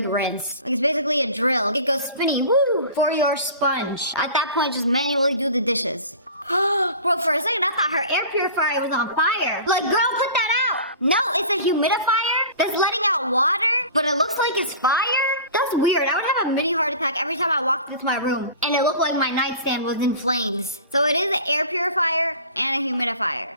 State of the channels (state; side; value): inverted; both; correlation -0.40